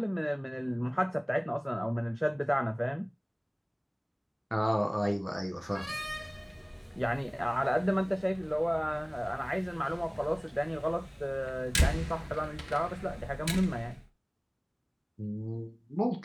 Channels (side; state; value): both; identical; correlation 1.00